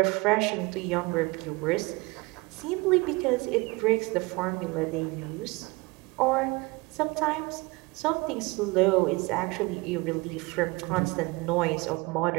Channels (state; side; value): quieter; left; 25.0 dB